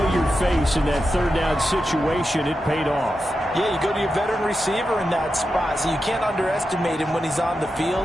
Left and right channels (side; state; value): both; normal; correlation 0.89